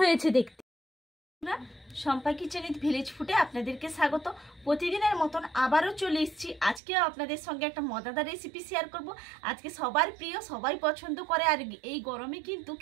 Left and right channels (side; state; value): left; drops out; at 6.8 s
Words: হয়েছে দেখতে। শম্পা কিচেন উইথ ভিলেজ ফুডে আপনাদেরকে স্বাগত। প্রতিদিনের মতন আবারও চলে এসেছি। আজকেও আপনাদের সঙ্গে একটা মজাদার রেসিপি শেয়ার করব। আজকে সবার প্রিয়, সবাই পছন্দ করে, আর এই গরমে কিন্তু